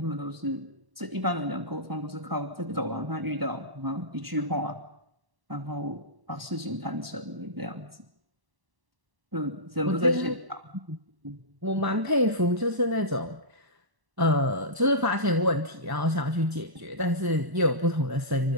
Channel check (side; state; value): left; late; 1.1 ms